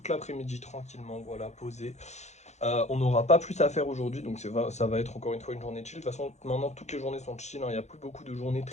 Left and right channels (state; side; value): late; right; 0.33 ms